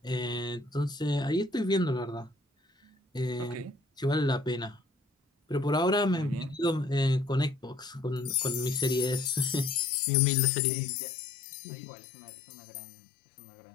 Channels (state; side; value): drops out; right; at 10.0 s